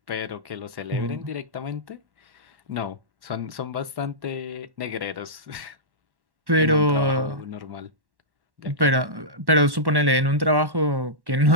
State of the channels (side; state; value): left; late; 1.1 ms